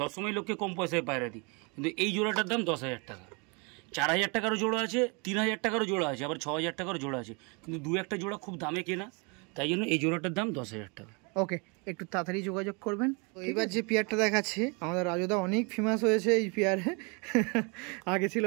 সবসময় লোককে কম পয়সায় পায়রা দিই, কিন্তু এই জোড়াটার দাম 10,000 টাকা। 4,000 টাকারও জোড়া আছে, 3,000 টাকারও জোড়া আছে, আবার 6,000 টাকারও জোড়া আছে, কিন্তু 2-1টা জোড়া খুব দামে কেনা, তাই জন্য এই জোড়াটার দাম 10,000 টাকা। ওকে, একটু তাড়াতাড়ি যোগাযোগ করবেন। এবার যে পেয়ারটা দেখাচ্ছি আমাদের রাজুদা অনেক ফেমাস হয়েছে এই পেয়ারে। আগে ছিল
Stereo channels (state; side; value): quieter; left; 31.9 dB